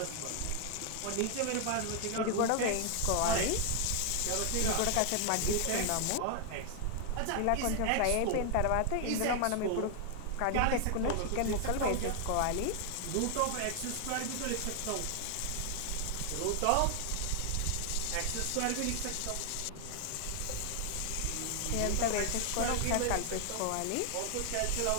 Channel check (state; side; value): different; both; correlation 0.00